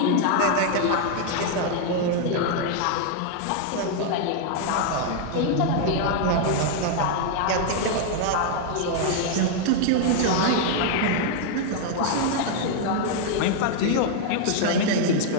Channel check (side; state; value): both; different; correlation 0.00